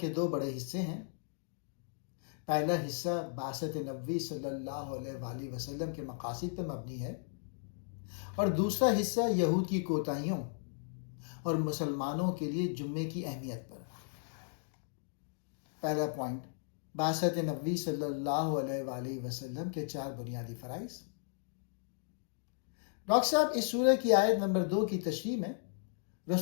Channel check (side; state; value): right; silent; digital silence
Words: دو بڑے حصے ہیں۔ پہلا حصہ بعثت نبوی صلی اللہ علیہ وآلہ وسلم کے مقاصد پر مبنی ہے اور دوسرا حصہ یہود کی کوتاہیوں اور مسلمانوں کے لیے جمعے کی اہمیت پر۔ پہلا پوائنٹ، بعثت نبوی صلی اللہ علیہ وآلہ وسلم کے 4 بنیادی فرائض۔ ڈاکٹر صاحب اس سورہ کی آیت نمبر 2 کی تشریح میں